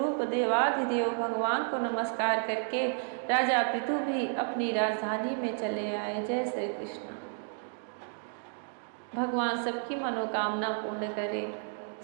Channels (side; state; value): left; silent; 56 dB below the other